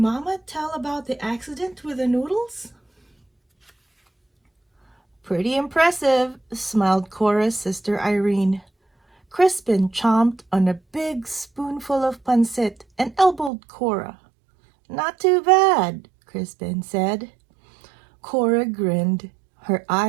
tell about the accident with the noodles? "Pretty impressive," smiled Cora's sister Irene. Crispin chomped on a big spoonful of pancit and elbowed Cora. "Not too bad," Crispin said. Cora grinned. Her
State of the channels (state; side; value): drops out; left; at 13.5 s